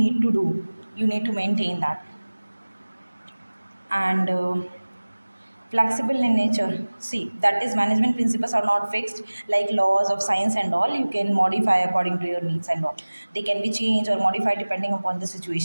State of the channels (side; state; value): both; inverted; correlation -1.00